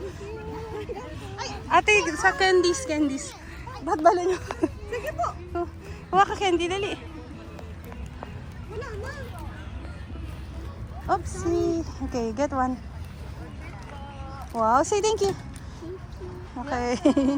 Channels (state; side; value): identical; both; correlation 1.00